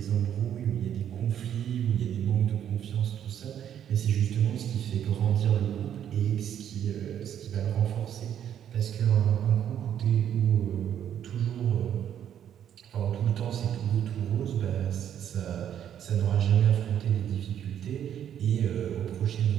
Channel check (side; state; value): left; quieter; 9.8 dB